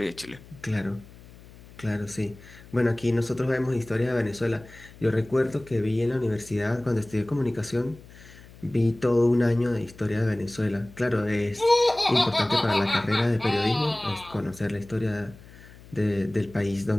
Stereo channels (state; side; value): noise; left; hum, 21 dB below the sound